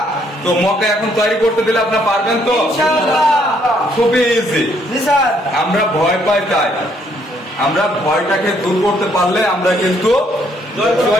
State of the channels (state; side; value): normal; both; correlation 0.68